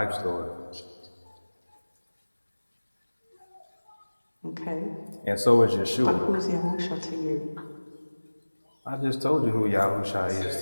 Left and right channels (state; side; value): inverted; both; correlation -1.00